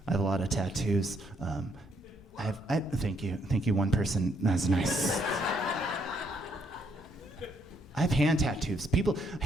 I have a lot of tattoos. Thank you, one person. That's nice. I have hand tattoos.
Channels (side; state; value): both; normal; correlation 0.72